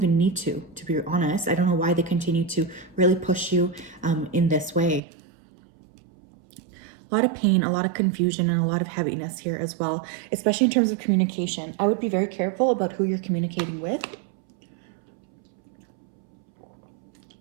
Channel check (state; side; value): drops out; left; at 5.0 s